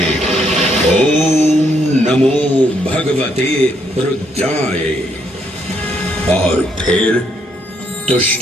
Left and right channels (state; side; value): normal; both; correlation 0.73